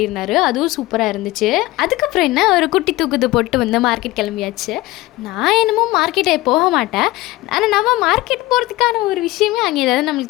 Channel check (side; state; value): right; quieter; 18.8 dB